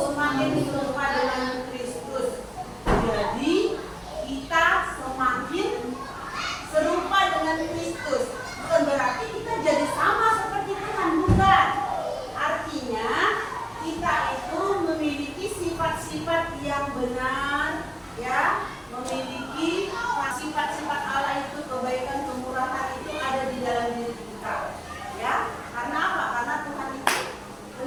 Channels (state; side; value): identical; both; correlation 1.00